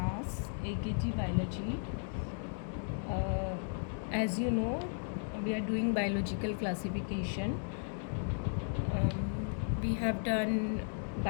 AKG biology. As you know, we are doing biological classification. We have done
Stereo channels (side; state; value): right; silent; digital silence